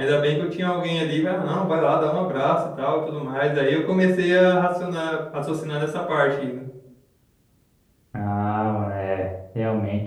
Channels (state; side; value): identical; both; correlation 1.00